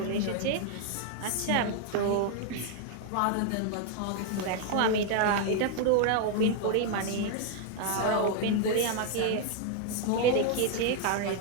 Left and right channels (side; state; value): both; different; correlation 0.00